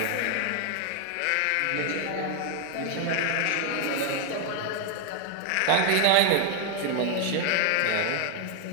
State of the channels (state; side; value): different; both; correlation 0.01